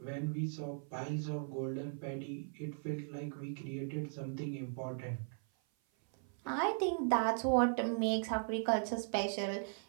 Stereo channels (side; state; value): left; silent; 52 dB below the other